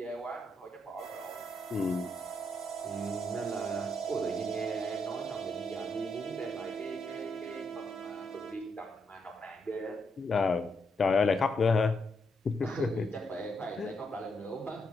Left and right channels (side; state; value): both; normal; correlation 0.79